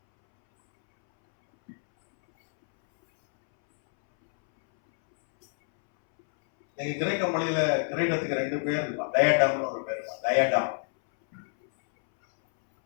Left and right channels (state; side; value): silent; right; 61 dB below the other